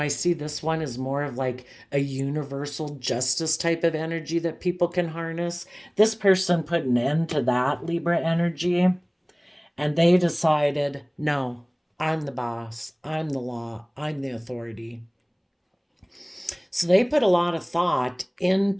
see this one as more of like a universal justice type of energy that people can harness. This person put an end to that Libra energy, and they decided, no, I'm the boss, I'm the law, I'm the authority. So they put a lot of thought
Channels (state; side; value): identical; both; correlation 1.00